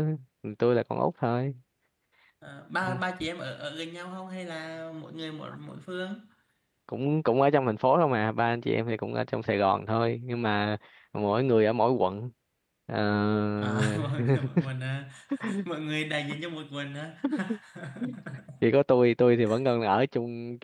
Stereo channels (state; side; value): identical; both; correlation 1.00